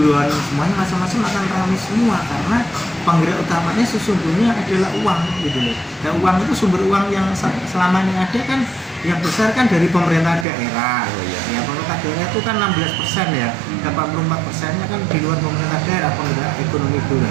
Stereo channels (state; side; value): drops out; left; at 10.5 s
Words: semuanya macam-macam akan ramai semua karena penggerak utamanya sesungguhnya adalah uang gitu loh. Dan uang itu sumber uang yang selama ini ada kan yang besar kan dari pemerintah daerah. Ya, pemerintah daerah itu kan 16% ya, 84%-nya kan di luar pemerintah daerah penggerak ekonomi